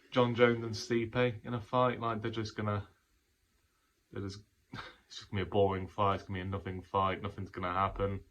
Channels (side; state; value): both; identical; correlation 1.00